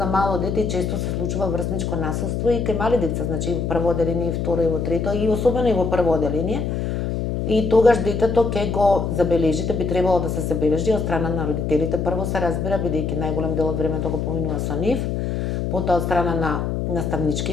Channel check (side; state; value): left; noise; hum, 1 dB below the sound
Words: мало дете, често се случува врсничко насилство и кај мали деца, значи и во прво одделение, и второ, и во трето, и особено и во прво одделение. И тогаш детето ќе го забележите, би требало да се забележи од страна на родителите. Прво се разбира, бидејќи најголем дел од времето го поминува со нив, потоа од страна на